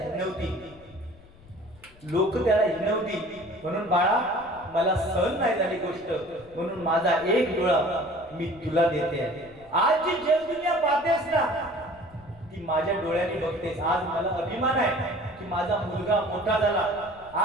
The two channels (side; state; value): left; noise; rumble, 24 dB below the sound